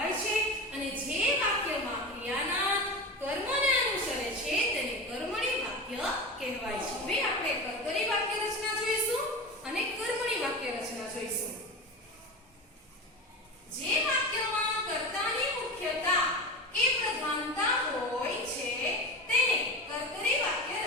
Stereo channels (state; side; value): normal; both; correlation 0.26